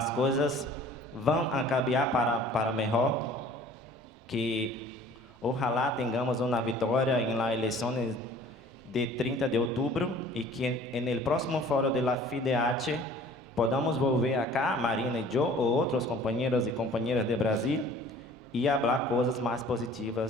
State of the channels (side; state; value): both; normal; correlation 0.49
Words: coisas vão cambiar para melhor, que ojalá tenhamos uma vitória em las eleições de 30 de outubro e que no próximo fórum da FIDH podamos volver acá, Marina e eu, ou outros companheiros e companheiras de Brasil, e falar coisas mais